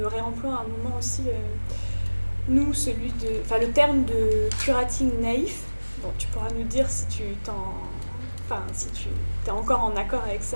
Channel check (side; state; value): both; inverted; correlation -1.00